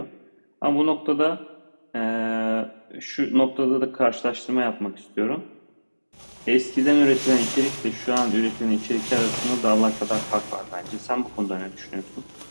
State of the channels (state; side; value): inverted; both; correlation -1.00